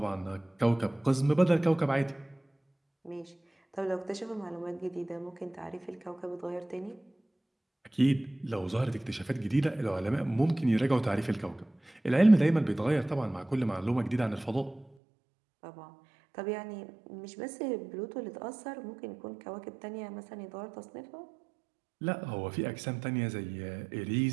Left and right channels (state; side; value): drops out; left; at 14.9 s